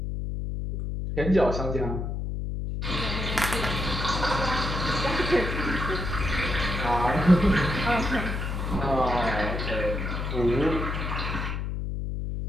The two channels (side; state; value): left; noise; hum, 3 dB below the sound